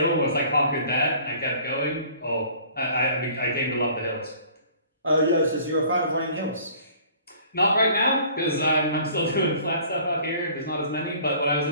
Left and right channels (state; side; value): inverted; both; correlation -0.51